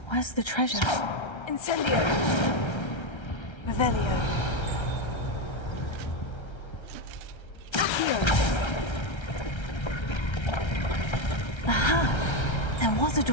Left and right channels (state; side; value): late; right; 1.3 ms